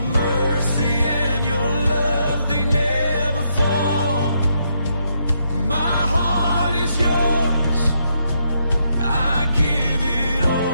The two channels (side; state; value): both; inverted; correlation -0.77